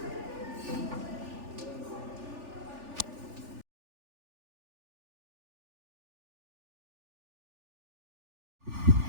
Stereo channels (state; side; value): late; left; 3.4 ms